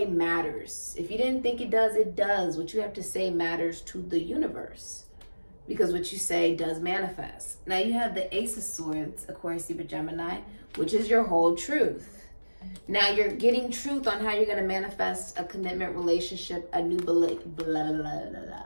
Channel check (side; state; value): both; inverted; correlation -1.00